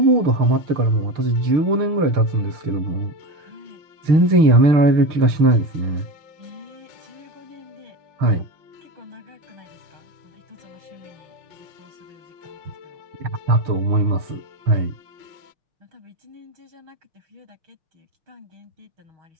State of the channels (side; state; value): left; late; 6.5 ms